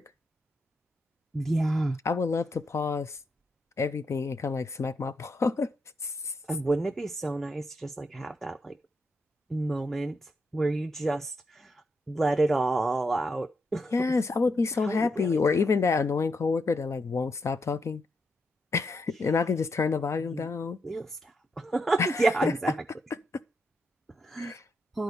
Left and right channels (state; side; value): normal; both; correlation 0.81